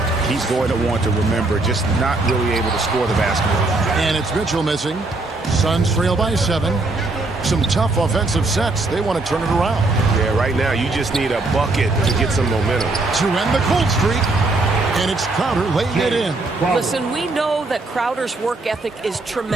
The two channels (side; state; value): left; quieter; 3.2 dB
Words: he's going to want to remember, just not really able to score the basketball. And it's Mitchell missing. Suns trail by 7. Some tough offensive sets. They want to turn it around. Yeah, right now you just need a bucket to get some momentum. To end the cold streak. And it's Crowder laying it in. Listen, we know that Crowder's work ethic is